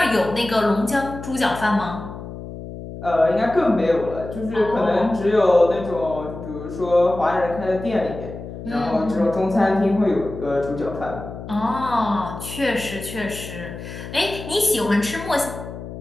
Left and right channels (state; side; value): noise; left; hum, 11 dB below the sound